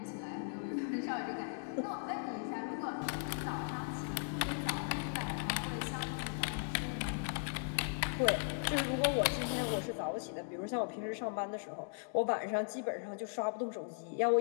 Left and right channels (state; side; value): silent; right; digital silence